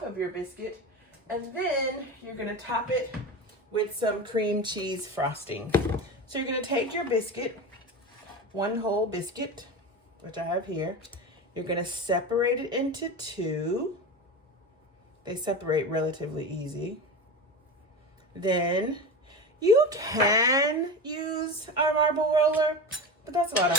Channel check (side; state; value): both; normal; correlation 0.25